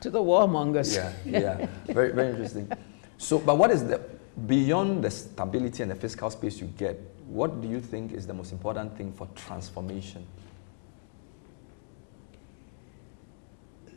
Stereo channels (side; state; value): right; silent; 57 dB below the other